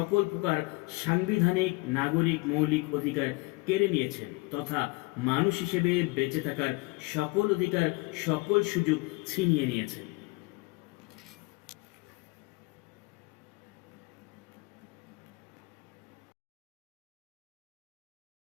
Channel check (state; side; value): quieter; right; 26.1 dB